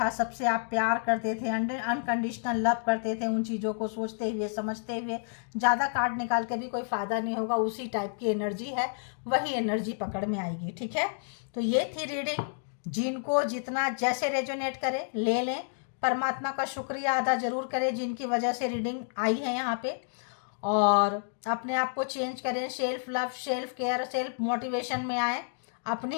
सबसे आप प्यार करते थे, अनकंडीशनल लव करते थे, उन चीज़ों को सोचते हुए समझते हुए, ज़्यादा कार्ड निकाल के भी कोई फ़ायदा नहीं होगा, उसी टाइप की एनर्जी है, वही एनर्जी पकड़ में आएगी। ठीक है, तो ये थी रीडिंग, जिनको जितना जैसे रेजोनेट करे ले लें, परमात्मा का शुक्रिया अदा जरूर करें जिनकी वजह से रीडिंग आई है यहाँ पे, और अपने आप को चेंज करें, self love, self care, self motivation में आए, अपनी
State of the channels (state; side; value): silent; right; digital silence